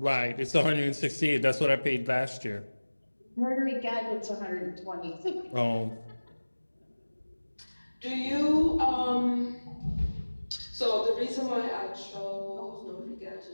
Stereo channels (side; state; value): both; inverted; correlation -1.00